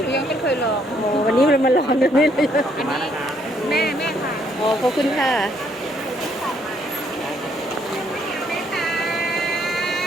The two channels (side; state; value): both; normal; correlation 0.69